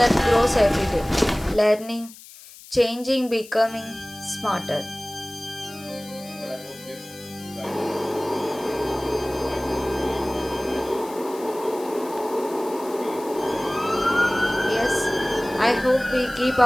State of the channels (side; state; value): left; noise; hiss, 19 dB below the sound